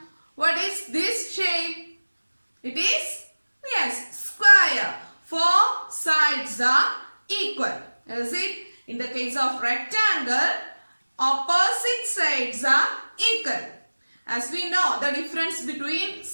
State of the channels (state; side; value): inverted; both; correlation -1.00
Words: what is this shape? It is, yes, square. Four sides are equal. Is it? In the case of rectangle, opposite sides are equal. As we know, the difference between